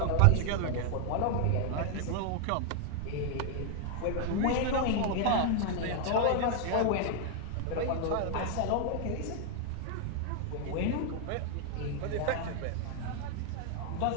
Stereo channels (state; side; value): different; both; correlation 0.00